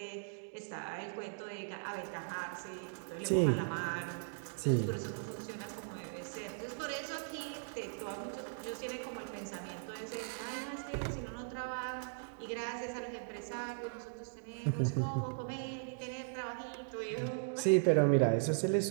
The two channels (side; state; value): left; silent; digital silence